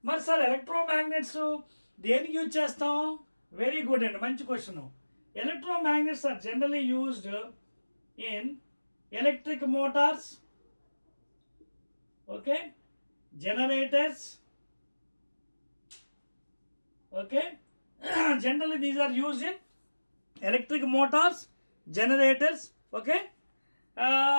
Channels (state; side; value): inverted; both; correlation -1.00